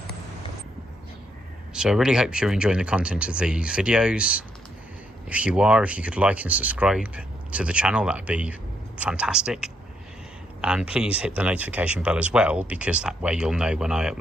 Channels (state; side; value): normal; both; correlation 0.76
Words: So I really hope you're enjoying the content of these videos. If you are, if you could like and subscribe to the channel, that would be fantastic. And please hit the notification bell as well, because that way you'll know when I